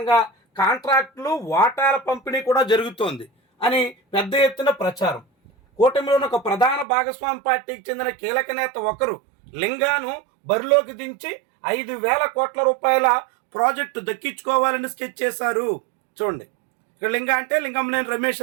కాంట్రాక్టులు వాటాల పంపిణీ కూడా జరుగుతోంది అని పెద్ద ఎత్తున ప్రచారం. కూటమిలోని ఒక ప్రధాన భాగస్వామి పార్టీకి చెందిన కీలక నేత ఒకరు లింగాను బరిలోకి దించి 5,000 కోట్ల రూపాయల ప్రాజెక్టు దక్కించుకోవాలని స్కెచ్ చేశారు. చూడండి, లింగ అంటే లింగమనేని రమేష్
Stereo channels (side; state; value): left; drops out; at 6.9 s